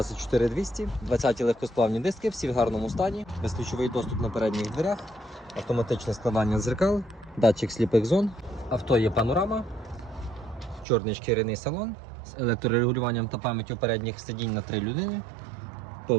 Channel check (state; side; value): drops out; left; at 10.9 s